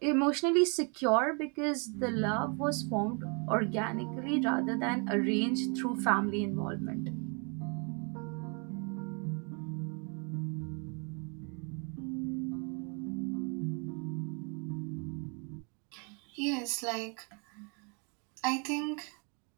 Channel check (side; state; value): left; quieter; 36.0 dB